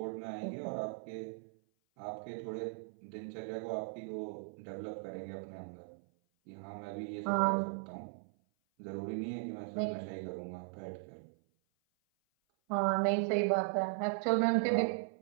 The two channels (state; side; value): silent; left; 53 dB below the other